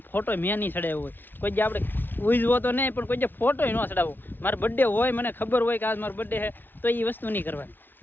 ફોટો મેં નહીં ચડાવ્યો હોય. કોઈ આપણે ઉજવો તો નહીં પણ કોઈ ફોટો ન ચડાવો. મારો બર્થડે હોય મને ખબર હોય કે આજ મારો બર્થડે છે તો એ વસ્તુ નહીં કરવાની.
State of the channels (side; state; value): right; late; 0.095 ms